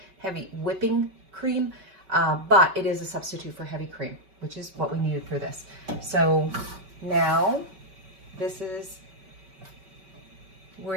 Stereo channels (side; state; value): left; late; 5.2 ms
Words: heavy whipping cream, but it is a substitute for heavy cream, which is what we needed for this. So now this is,